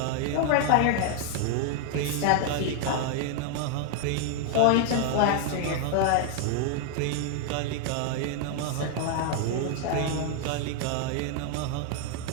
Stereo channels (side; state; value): both; different; correlation 0.00